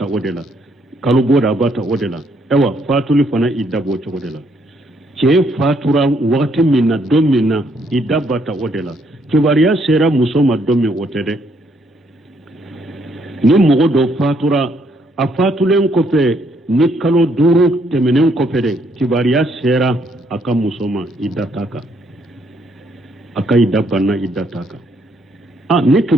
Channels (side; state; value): both; normal; correlation 0.71